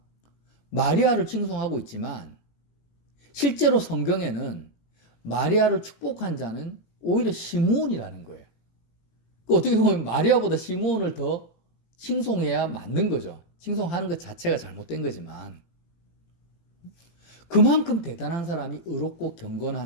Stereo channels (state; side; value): late; right; 17 ms